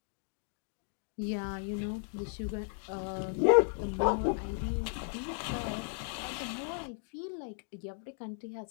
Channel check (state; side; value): silent; right; 54 dB below the other